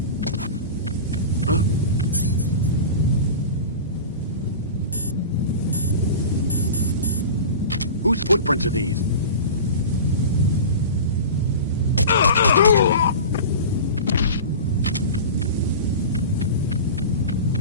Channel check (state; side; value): inverted; both; correlation -0.32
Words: Whose footprints are these?